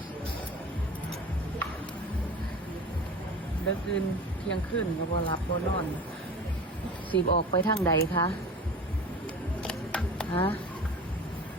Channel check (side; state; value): both; normal; correlation 0.35